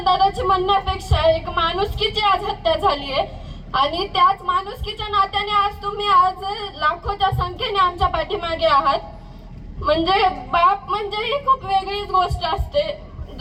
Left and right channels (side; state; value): both; identical; correlation 1.00